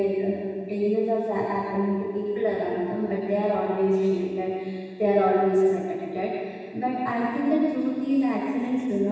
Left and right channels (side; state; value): both; identical; correlation 1.00